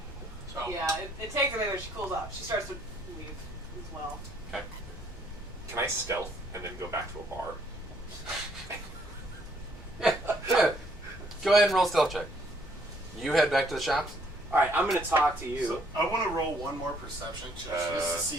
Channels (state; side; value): normal; both; correlation 0.66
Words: Yeah, it takes a minute when she cools off. She starts to leave as well. Can I stealth and then go back to a bar? Go ahead and roll stealth check. You head back to the shops. All right, I'm gonna talk to you. So I want to roll one more perception check just to see